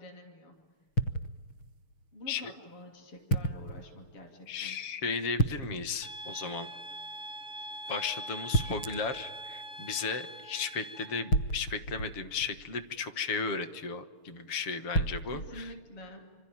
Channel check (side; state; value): right; late; 6.9 ms